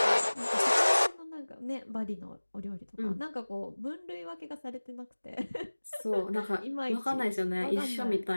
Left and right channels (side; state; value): both; inverted; correlation -1.00